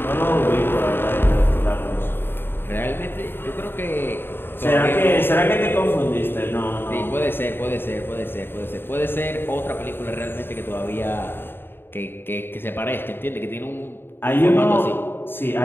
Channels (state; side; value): late; right; 0.10 ms